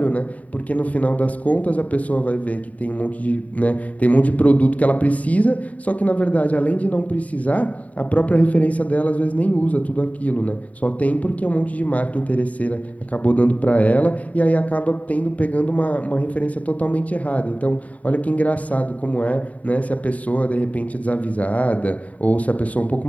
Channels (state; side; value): late; right; 0.069 ms